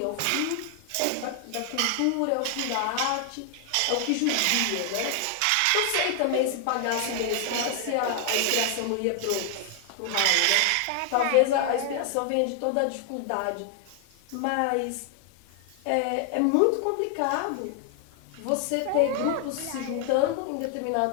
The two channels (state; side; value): different; both; correlation 0.00